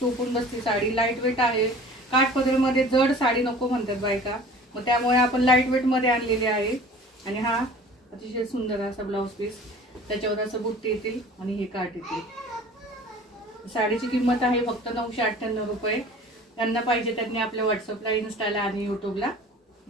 बसते साडी. लाईट वेट आहे. काठपदर मध्ये जड साडी नको म्हणतात बायका, मग त्यामुळे आपण लाईट वेट मध्ये आणलेली आहे. आणि हा अतिशय सुंदर असा ब्लाउज पीस, त्याच्यावर असं बुट्टी येतील आणि हे काठ येतील. साडीची किंमत आहे फक्त 998 रुपये. त्यांना पाहिजे त्यांनी आपल्या व्हॉट्सअपला, इन्स्टाला आणि यूट्यूबला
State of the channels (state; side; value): normal; both; correlation 0.45